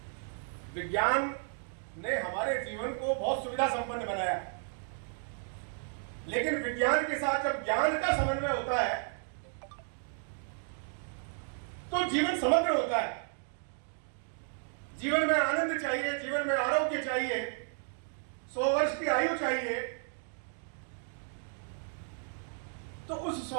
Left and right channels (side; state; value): left; silent; 55 dB below the other